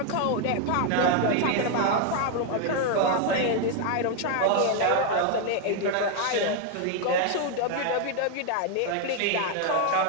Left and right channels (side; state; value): both; different; correlation 0.01